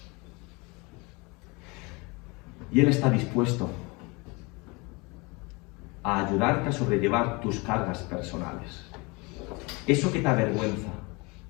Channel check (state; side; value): quieter; right; 27.1 dB